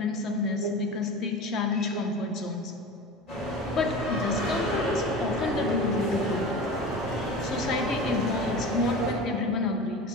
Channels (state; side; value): normal; both; correlation 0.32